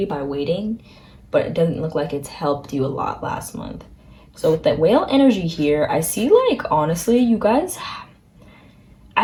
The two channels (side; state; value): both; identical; correlation 1.00